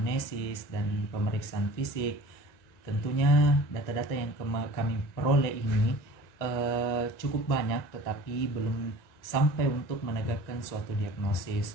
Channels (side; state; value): right; late; 1.9 ms